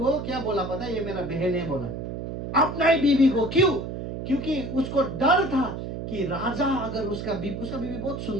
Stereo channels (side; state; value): right; noise; hum, 6 dB below the sound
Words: क्या बोला पता है, ये मेरा बहन है बोला, अपना ही बीवी को। क्यों? क्योंकि उसको डर था कि राजा अगर उसका बीवी बहुत